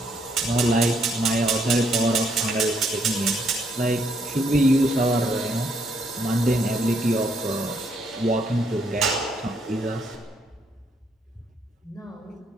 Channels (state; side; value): normal; both; correlation 0.72